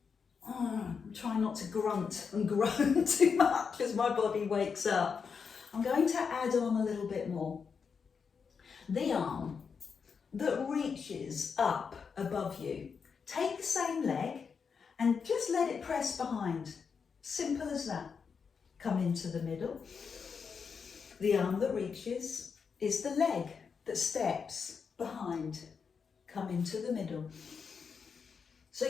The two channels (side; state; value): right; quieter; 5.9 dB